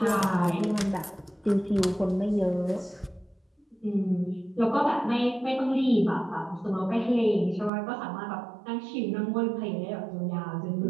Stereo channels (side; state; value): left; drops out; at 7.7 s